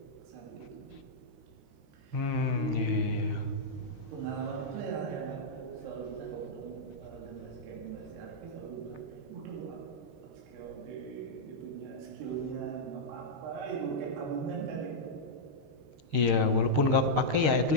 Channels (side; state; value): left; late; 13 ms